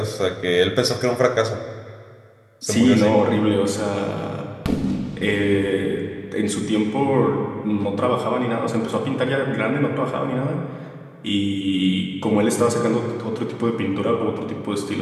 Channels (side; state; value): both; identical; correlation 1.00